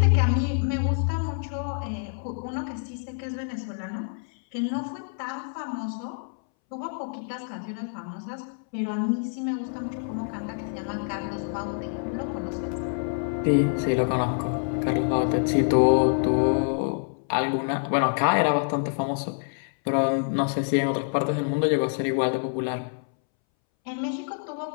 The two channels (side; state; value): right; silent; 60 dB below the other